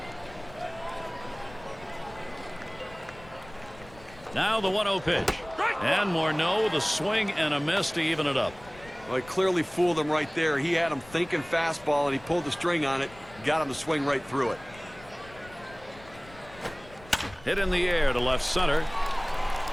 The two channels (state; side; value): noise; left; rumble, 21 dB below the sound